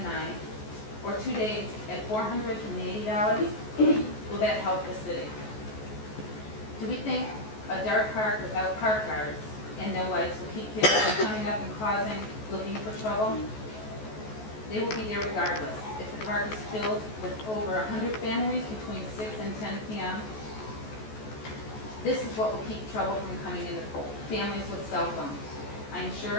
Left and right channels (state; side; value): late; right; 14 ms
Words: or 2 days at $480, will that help the city? Do we think a dark park without park guards and no lights will keep kids from coming up and looking for trouble? They will be there regardless. If the park is filled with over 100 families between 6 and 10 p.m., this is what will keep trouble from coming in the pool. Families with cell phones. I am